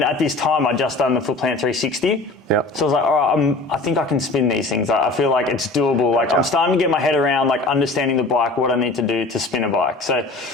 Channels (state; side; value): quieter; right; 3.3 dB